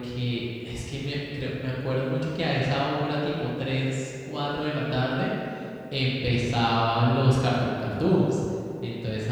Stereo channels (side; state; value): both; identical; correlation 1.00